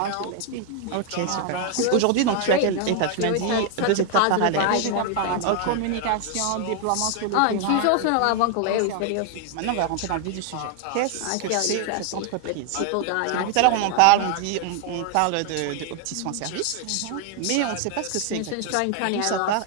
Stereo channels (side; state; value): both; different; correlation 0.00